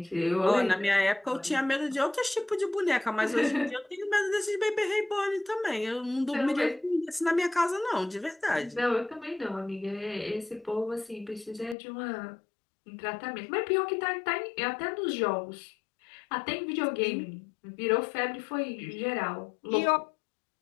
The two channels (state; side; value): drops out; right; at 11.8 s